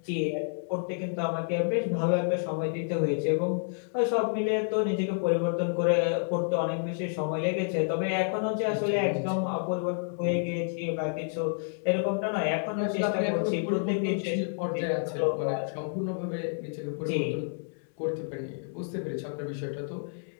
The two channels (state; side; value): silent; right; digital silence